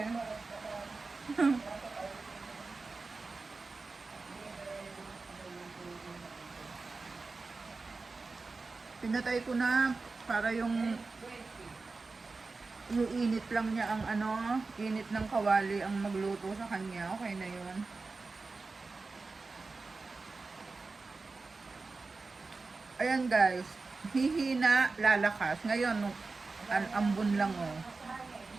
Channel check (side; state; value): left; quieter; 3.9 dB